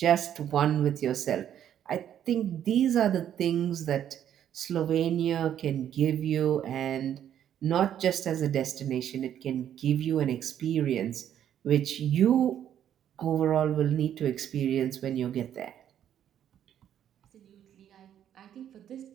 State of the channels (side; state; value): left; quieter; 10.2 dB